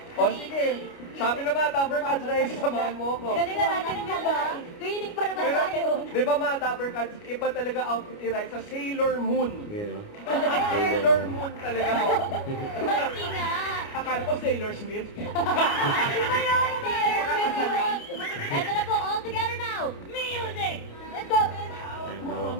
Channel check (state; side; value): late; right; 29 ms